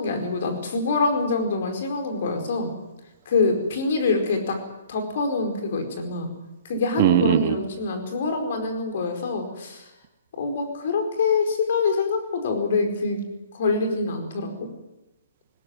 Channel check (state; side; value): inverted; both; correlation -0.51